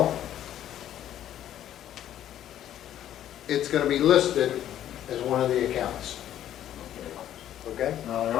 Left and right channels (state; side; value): quieter; right; 11.5 dB